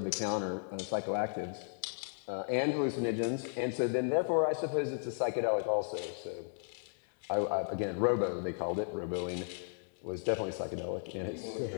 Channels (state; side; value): silent; right; digital silence